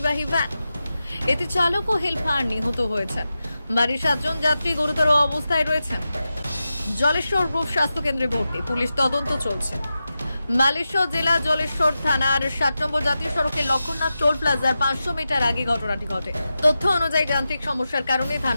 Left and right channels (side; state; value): both; inverted; correlation -0.92